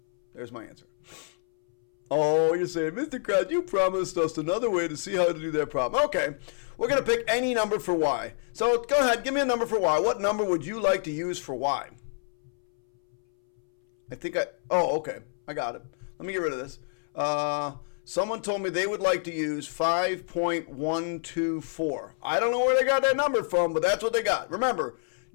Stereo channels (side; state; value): right; silent; 58 dB below the other